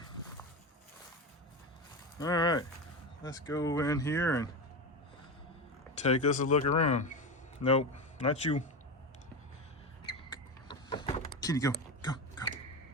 All right, let's go in here and take us a look around. Nope, not you. Kitty, go, go, go.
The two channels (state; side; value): normal; both; correlation 0.19